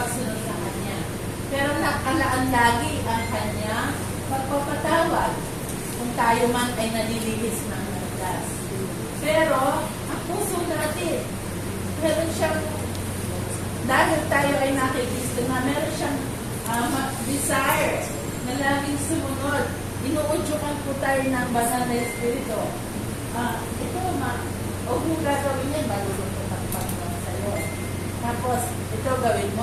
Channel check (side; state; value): both; identical; correlation 1.00